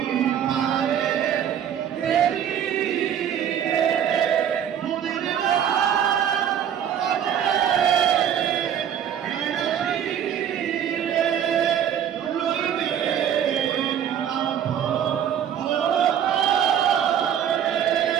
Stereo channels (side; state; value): left; quieter; 9.3 dB